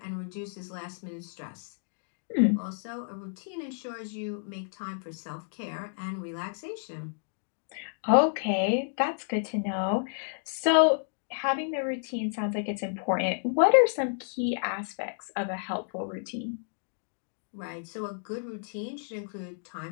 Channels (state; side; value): silent; right; digital silence